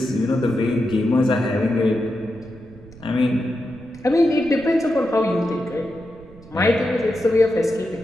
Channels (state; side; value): noise; right; rumble, 21 dB below the sound